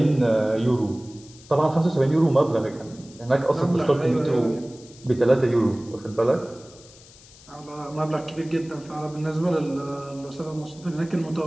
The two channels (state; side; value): noise; left; hiss, 23 dB below the sound